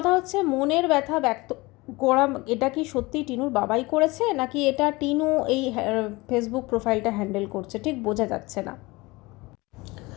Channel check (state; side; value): quieter; right; 22.8 dB